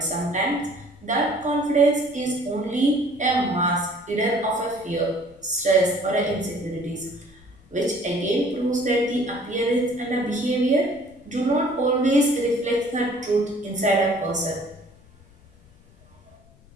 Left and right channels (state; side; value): noise; left; rumble, 27 dB below the sound